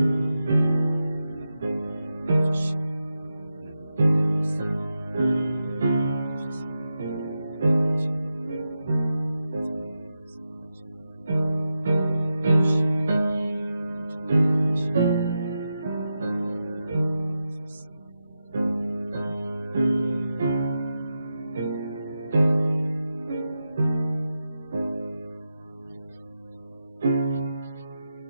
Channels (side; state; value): both; inverted; correlation -0.90